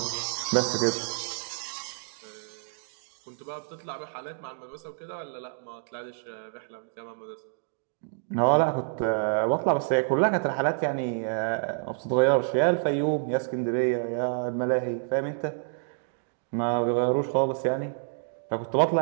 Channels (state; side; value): silent; left; digital silence